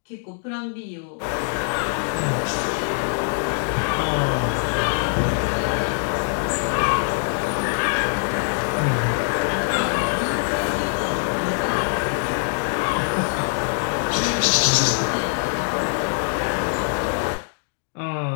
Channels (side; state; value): right; silent; digital silence